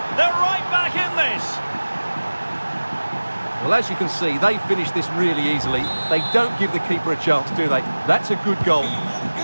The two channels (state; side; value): inverted; both; correlation -1.00